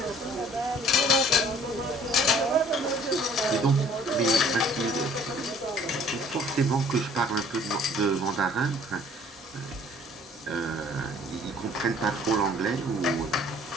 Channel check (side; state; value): both; normal; correlation 0.54